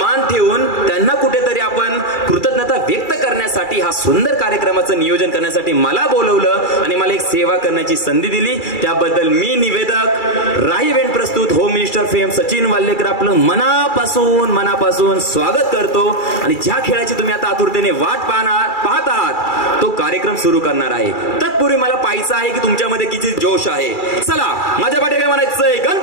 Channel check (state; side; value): late; right; 2.3 ms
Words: ठेवून त्यांना कुठेतरी आपण कृतज्ञता व्यक्त करण्यासाठी हा सुंदर कार्यक्रमाचं नियोजन करण्यासाठी मला बोलवलं आणि मला एक सेवा करण्याची संधी दिली. त्याबद्दल मी निवेदक राही इव्हेंट प्रस्तुत home minister fame Sachin Wallekar आपलं मनापासून स्वागत करतो. आणि ज्या खेळाची तुम्ही आता आतुरतेने वाट पाहत आहात तो कार्यक्रम सुरू करणार आहे. तत्पूर्वी मला पाहायचं आहे की तुमच्यामध्ये किती जोश आहे. चला माझ्या पाठी काय म्हणायचंय?